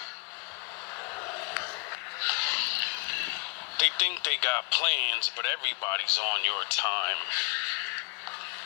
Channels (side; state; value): right; quieter; 31.2 dB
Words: They think they got plans, but everybody's on your time.